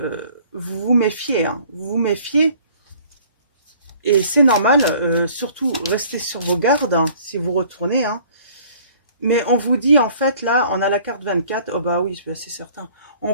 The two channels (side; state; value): both; inverted; correlation -0.54